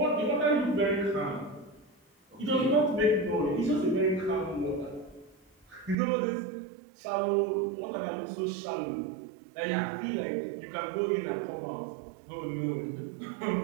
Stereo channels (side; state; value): left; drops out; at 6.0 s